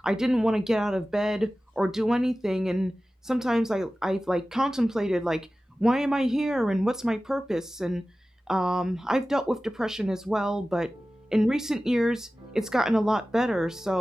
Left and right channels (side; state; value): both; normal; correlation 0.96